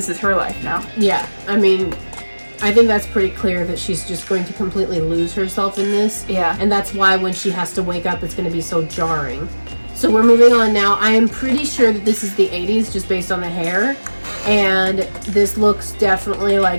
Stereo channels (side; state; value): both; inverted; correlation -1.00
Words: is her life now. Yeah. I mean, I think that's pretty clear that she's just going to completely lose herself in this. Yeah. And that's why when she has to wake up, it's going to be so jarring. So we're moving on now. I am pretty sure that this is the 80s just based on the hair. And this looks definitely